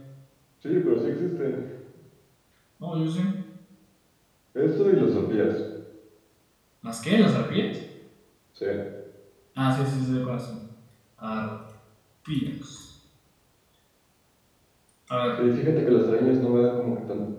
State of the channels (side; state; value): both; identical; correlation 1.00